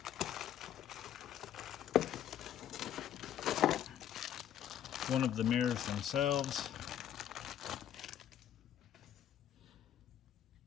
One of the mirrors themselves.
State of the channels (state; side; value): quieter; right; 10.5 dB